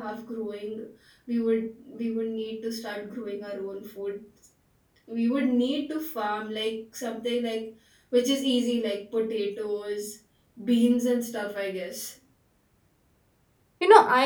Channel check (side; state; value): both; identical; correlation 1.00